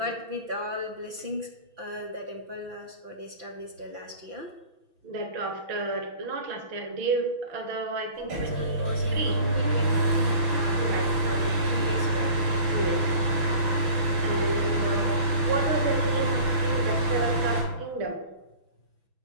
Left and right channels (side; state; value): left; late; 6.0 ms